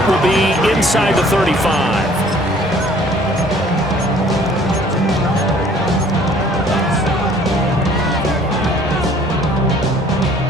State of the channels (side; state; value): both; normal; correlation 0.56